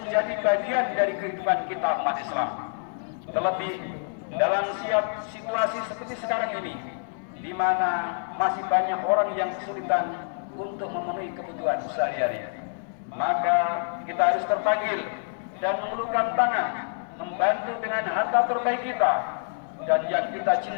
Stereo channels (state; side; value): silent; right; digital silence